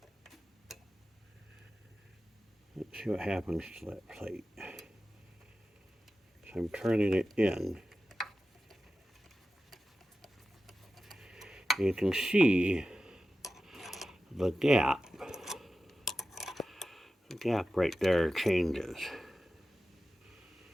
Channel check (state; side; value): normal; both; correlation 0.93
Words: let's see what happens to that plate. So I'm turning it in. You can see the gap. The gap right there changes.